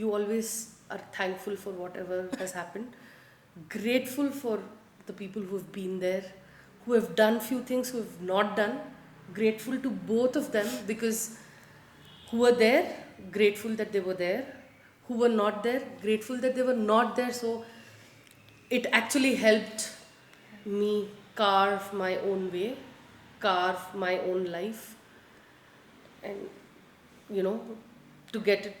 always are thankful for whatever has happened, grateful for the people who have been there, who have done few things, who have not done. Grateful to both of them, because who were there, grateful that they were there. Who were not there, grateful that they were not there. So it actually helped me carve my own way, carve my own life, and you know, to get it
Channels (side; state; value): both; identical; correlation 1.00